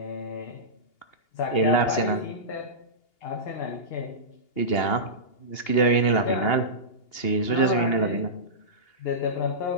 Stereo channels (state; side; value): late; right; 2.8 ms